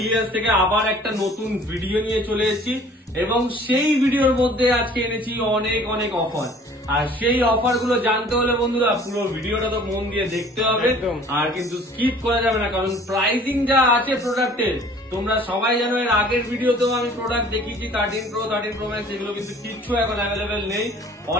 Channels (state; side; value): normal; both; correlation 0.51